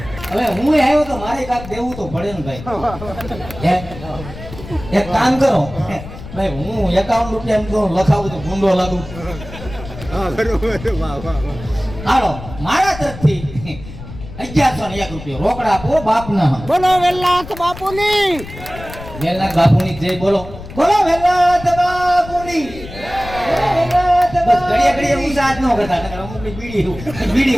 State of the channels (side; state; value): left; noise; rumble, 13 dB below the sound